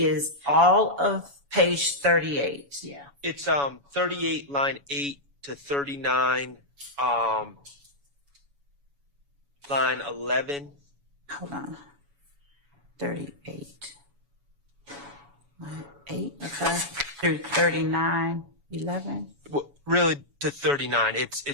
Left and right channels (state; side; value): late; left; 7.1 ms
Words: all of page 38. Yeah. It's 38 line 8 to 39 line 11. Hold on. 38. Line 8. Okay. Through 39, 11. Well, really to 39. It's